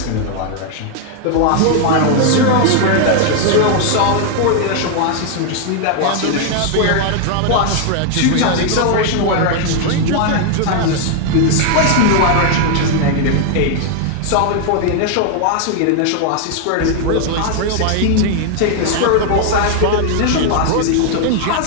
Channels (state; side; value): different; both; correlation 0.00